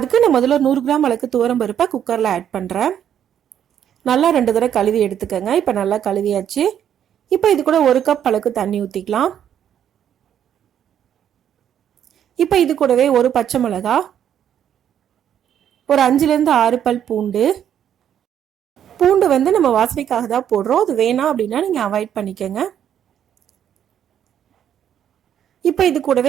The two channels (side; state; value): left; quieter; 9.6 dB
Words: நான் முதல்ல 100 கிராம் அளவுக்கு துவரம் பருப்பை குக்கரில் ஆட் பண்ணுறேன். நல்லா 2 தடவை கழுவி எடுத்துக்கோங்க. இப்போ நல்லா கழுவியாச்சு. இப்போ இது கூட 1 கப் அளவுக்கு தண்ணி ஊற்றிக்கலாம். இப்போ இது கூடவே ஒரு பச்சை மிளகா, ஒரு 5லேருந்து 6 பல் பூண்டு. பூண்டு வந்து நம்ம வாசனைக்காக தான் போடுறோம், அது வேணாம் அப்படின்னா நீங்கள் அவாய்ட் பண்ணிக்கோங்க. இப்போ இது